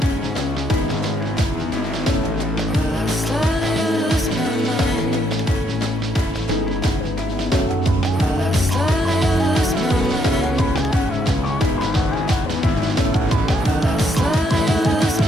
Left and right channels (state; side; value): normal; both; correlation 0.73